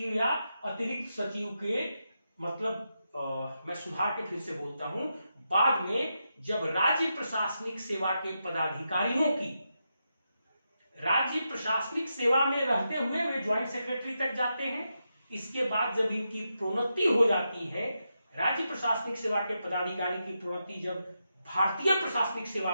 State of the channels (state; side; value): inverted; both; correlation -0.86